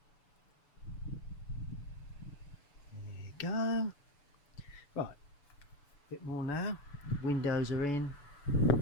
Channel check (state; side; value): late; right; 7.0 ms